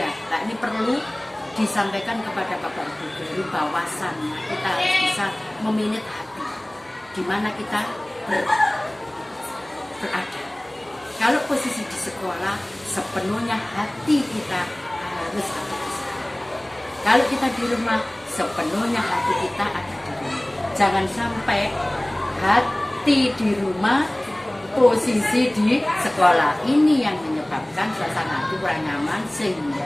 nah ini perlu disampaikan kepada Bapak Ibu guru bahwasannya kita harus bisa meminit hati di mana kita berada. Kalau posisi di sekolah, sepenuhnya hati kita harus ada di sana. Kalau kita di rumah, sepenuhnya hati kita ada di rumah. Jangan sampai hati di rumah, posisi di sekolah. Ini yang menyebabkan suasana hati kurang nyaman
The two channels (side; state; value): right; noise; hum, 30 dB below the sound